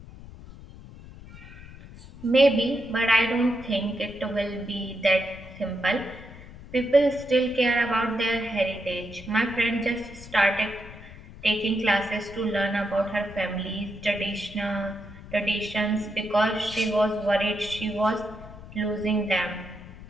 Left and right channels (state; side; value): noise; left; rumble, 16 dB below the sound